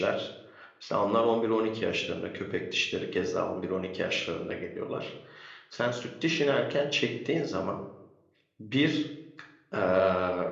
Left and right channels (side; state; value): both; identical; correlation 1.00